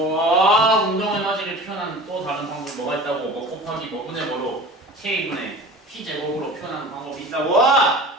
운동 에너지를 표현하는 또 다른 방법이 뭐가 있다고? 뭐 곱하기 뭐분의 뭐로 K분의 P 제곱으로 표현하는 방법이 있다고?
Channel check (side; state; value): both; normal; correlation 0.39